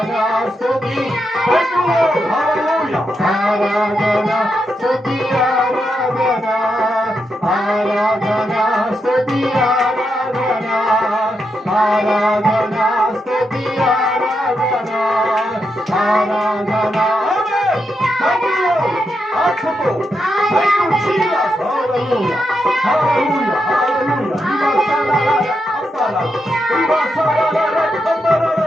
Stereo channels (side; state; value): both; normal; correlation 0.84